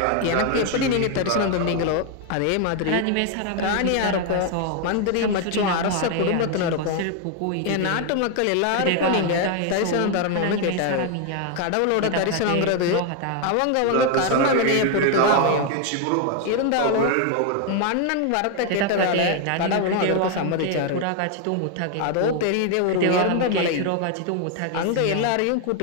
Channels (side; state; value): both; different; correlation 0.01